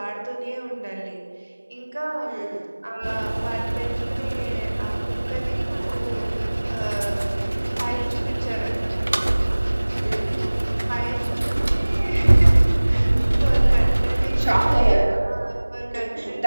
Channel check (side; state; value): both; inverted; correlation -1.00